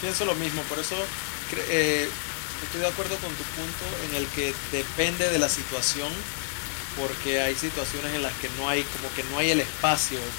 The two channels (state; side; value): silent; right; digital silence